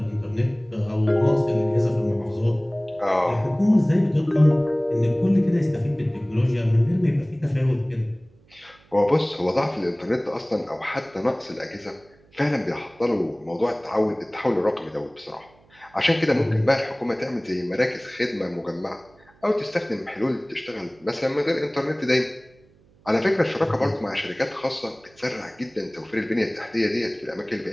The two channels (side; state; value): right; noise; hum, 30 dB below the sound